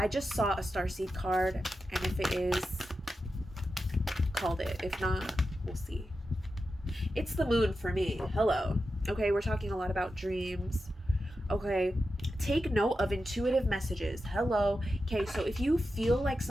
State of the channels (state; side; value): normal; both; correlation 0.90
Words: just saw a starseed card, and if it is, called it. If not, we'll see. It's the moon for me. Hello. Okay, we're talking a lot about dreams. Okay, take note of intuitive messages. Hello. Okay, so if you feel like